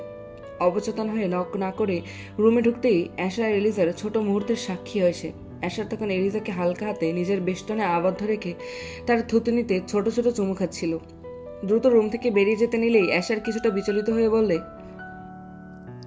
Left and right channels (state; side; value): identical; both; correlation 1.00